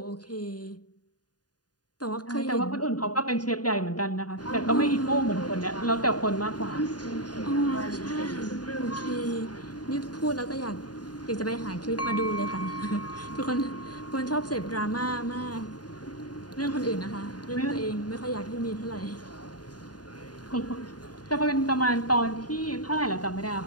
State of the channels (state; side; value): late; right; 0.69 ms